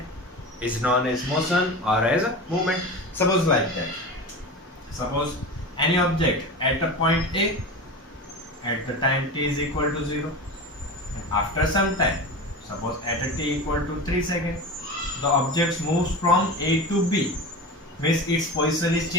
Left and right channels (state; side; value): normal; both; correlation 0.28